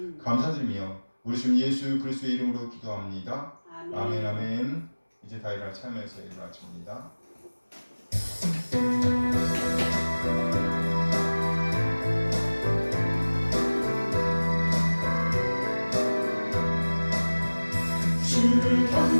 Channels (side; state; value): both; inverted; correlation -1.00